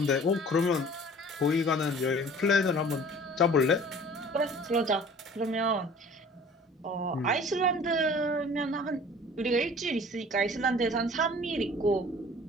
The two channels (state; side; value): normal; both; correlation 0.47